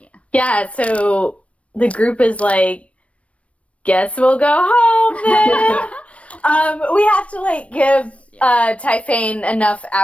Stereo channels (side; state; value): right; late; 0.063 ms